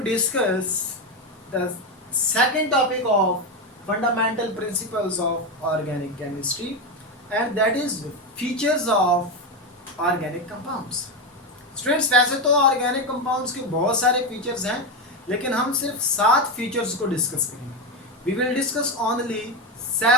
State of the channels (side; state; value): both; normal; correlation 0.12